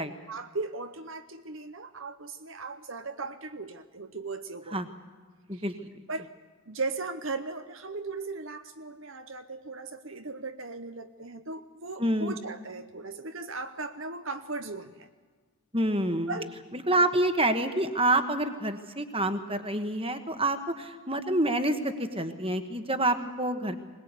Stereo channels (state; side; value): normal; both; correlation 0.15